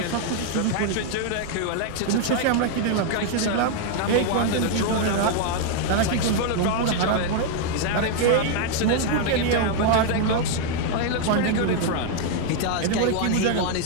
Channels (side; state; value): both; different; correlation 0.00